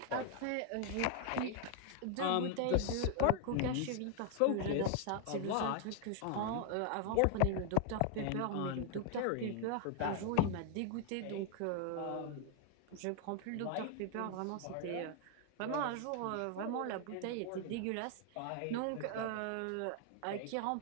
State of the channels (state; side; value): different; both; correlation 0.00